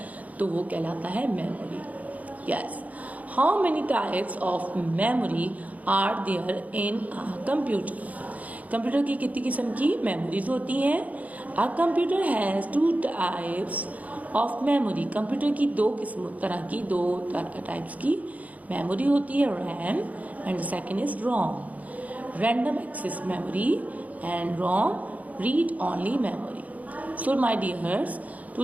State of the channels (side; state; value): left; late; 0.073 ms